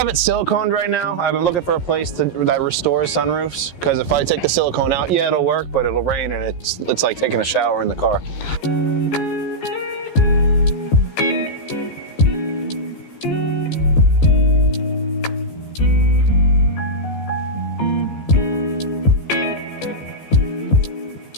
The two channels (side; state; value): right; late; 14 ms